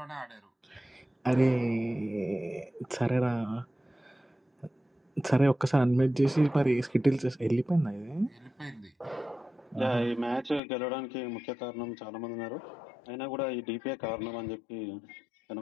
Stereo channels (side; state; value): right; drops out; at 10.6 s